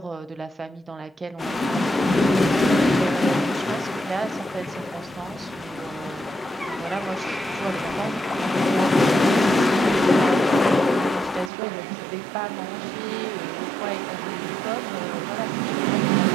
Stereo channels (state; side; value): drops out; left; at 11.5 s